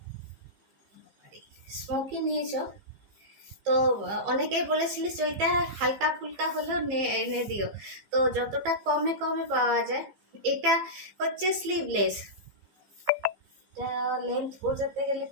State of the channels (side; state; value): left; late; 15 ms